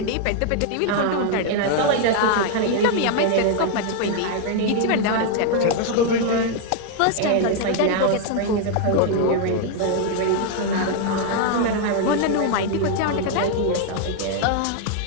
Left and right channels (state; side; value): different; both; correlation 0.00